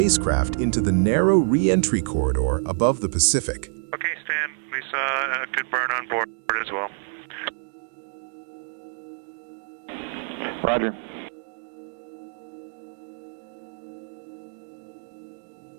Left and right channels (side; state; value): left; silent; digital silence